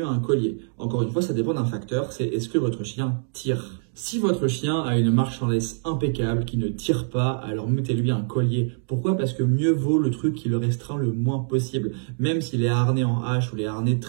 un collier? Encore une fois, ça dépend d'un facteur, c'est est-ce que votre chien tire? Si votre chien a une marche en laisse impeccable, qui ne tire pas, alors mettez-lui un collier. Pourquoi? Parce que mieux vaut le truc qui le restreint le moins possible. Même si les harnais en H ou les harnais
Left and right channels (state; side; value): silent; left; digital silence